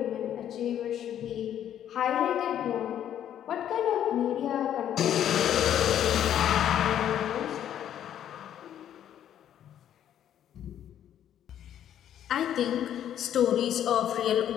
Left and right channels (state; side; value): quieter; right; 10.4 dB